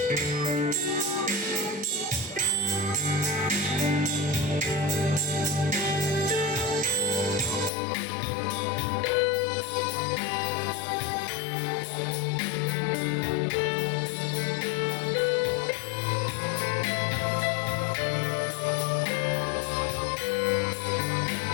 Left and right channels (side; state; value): right; drops out; at 7.7 s